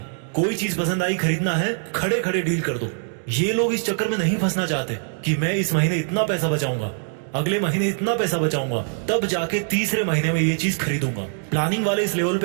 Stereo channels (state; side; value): silent; left; digital silence